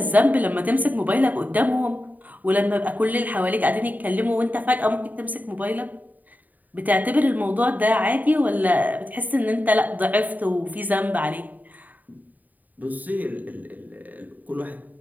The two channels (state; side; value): late; left; 0.082 ms